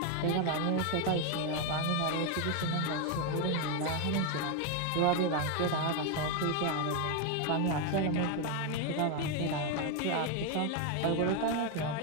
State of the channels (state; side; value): different; both; correlation 0.01